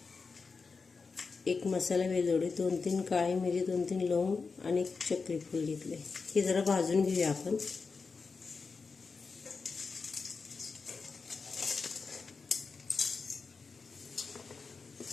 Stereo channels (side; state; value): right; quieter; 4.7 dB